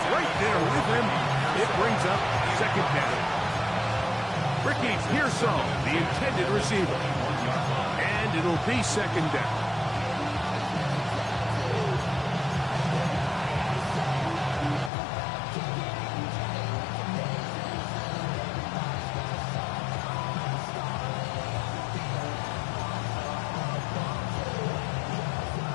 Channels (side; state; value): right; drops out; at 14.9 s